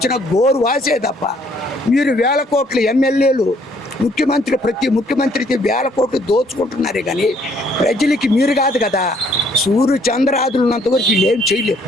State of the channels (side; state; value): both; normal; correlation 0.64